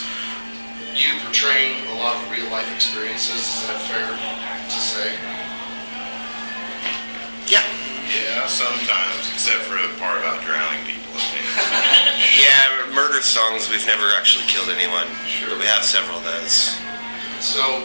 you portraying a lot of real life experiences. Is that fair to say? Yeah. Yeah, sometimes, except for the part about drowning people. Yeah, murder songs, we've never actually killed anyone. Sure. But we have several of those. So,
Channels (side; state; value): both; inverted; correlation -1.00